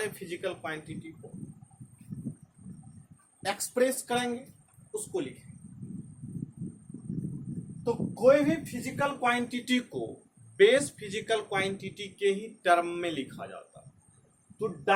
फिजिकल क्वांटिटी को एक्सप्रेस करेंगे, उसको लिखेंगे। तो कोई भी फिजिकल क्वांटिटी को बेस फिजिकल क्वांटिटी के ही टर्म में लिखा जाता है। तो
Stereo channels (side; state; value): both; identical; correlation 1.00